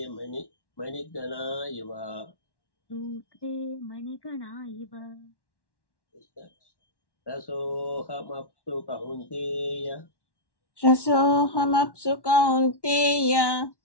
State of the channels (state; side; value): late; right; 1.1 ms